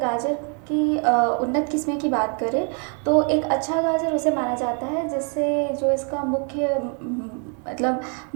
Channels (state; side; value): quieter; left; 40.0 dB